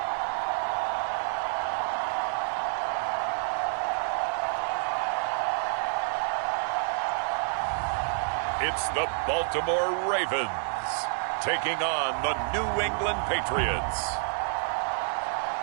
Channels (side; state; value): left; silent; digital silence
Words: It's the Baltimore Ravens taking on the New England Patriots.